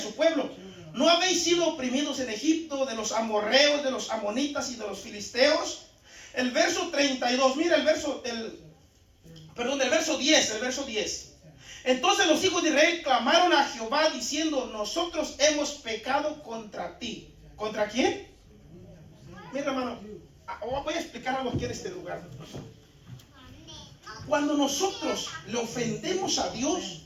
su pueblo. ¿No habéis sido oprimidos en Egipto de los amorreos, de los amonitas y de los filisteos? El verso 32, mira el verso del verso 10. Entonces los hijos de Israel clamaron a Jehová diciendo, nosotros hemos pecado contra ti. ¿Contra quién? Mira, hermano, voy a explicar algo aquí en este lugar. Cuando nosotros le ofendemos a Dios,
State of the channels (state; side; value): identical; both; correlation 1.00